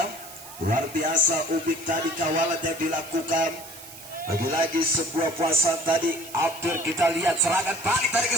Luar biasa Ubik tadi kawalan yang dilakukan. Lagi-lagi sebuah puasan tadi hampir kita lihat serangan balik dari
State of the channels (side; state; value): right; noise; hiss, 16 dB below the sound